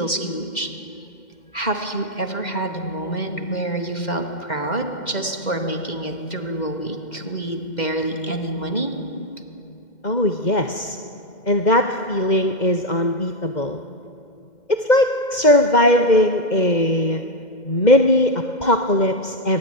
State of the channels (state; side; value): late; right; 2.1 ms